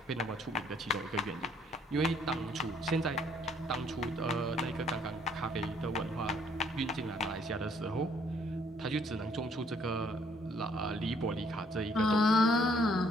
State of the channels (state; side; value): normal; both; correlation 0.64